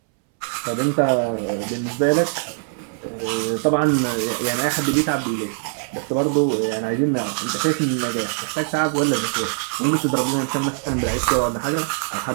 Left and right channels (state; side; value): silent; left; 64 dB below the other